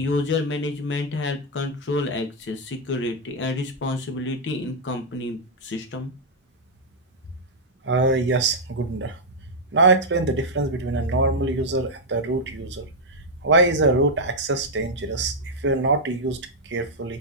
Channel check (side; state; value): both; normal; correlation -0.03